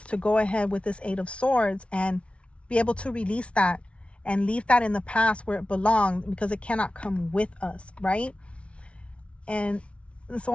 to go ahead with this 8 of Swords and be able to release that and leave that in the past where it belonged, because it cannot come with us, right? And it's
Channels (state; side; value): late; right; 0.061 ms